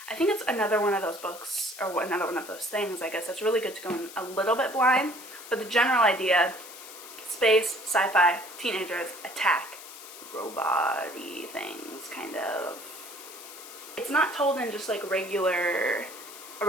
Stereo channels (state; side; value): noise; left; hiss, 15 dB below the sound